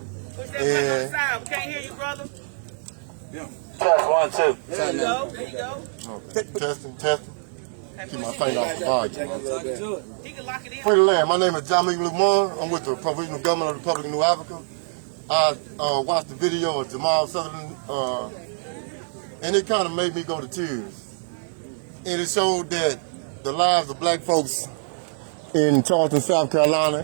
Push that mic outside. We can't hear you, brother. Test 1, 2. There you go. There you go. Okay. Testing. Keep my finger off the volume. He can lock it in. Free the land. My name is Jamal. I'm with the Provisional Government of the Republic of New Africa. I watched the video of Jamal Sutherland, and it kind of made me go to tears. And it showed that the lives of black folks in Charleston, South Carolina,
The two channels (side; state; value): left; silent; digital silence